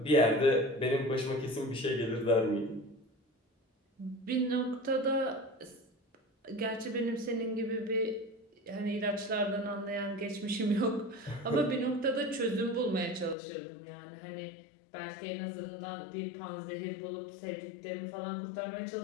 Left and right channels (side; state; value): right; drops out; at 13.4 s